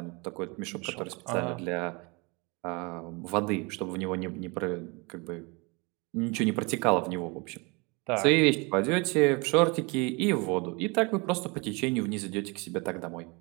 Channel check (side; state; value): left; quieter; 28.9 dB